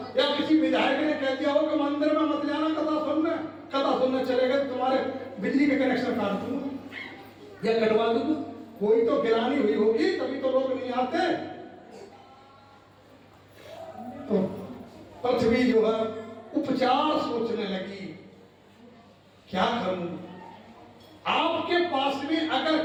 या किसी विधायक ने कह दिया हो कि मंदिर में मत जाना, कथा सुनने चले गए, तुम्हारे बिजली के कनेक्शन काट दूंगा या कटवा दूंगा। कोई तो गिरानी हुई होगी, तभी तो लोग नहीं आते। तो पृथ्वी जो है उपचार सोचने लगी, क्या करूं? आपके पास में अगर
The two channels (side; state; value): both; identical; correlation 1.00